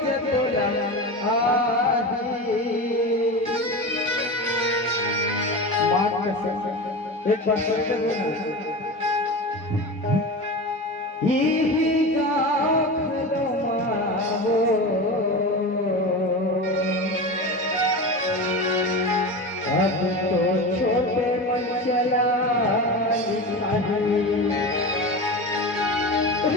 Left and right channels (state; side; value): normal; both; correlation 0.26